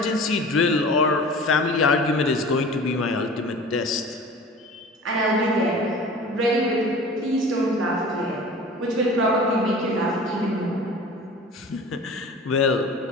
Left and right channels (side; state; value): both; normal; correlation 0.40